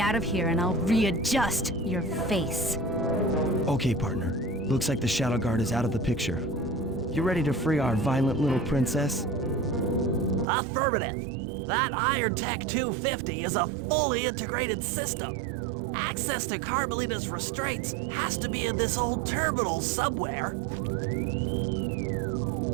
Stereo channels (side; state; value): left; drops out; at 10.5 s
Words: out of here and I'll readjust your face. Okay, partner. Looks like the Shadow Guard is out of the picture. You ready to free our violent little princess? Affirmative. That Iron Tech 250 is a fully integrated system. Access to Carmelita's restraints has to be in this old terminal somewhere.